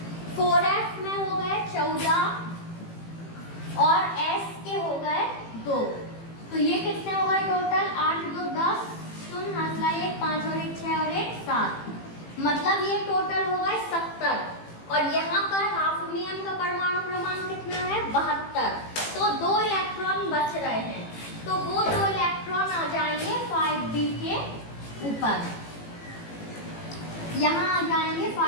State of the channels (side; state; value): right; late; 18 ms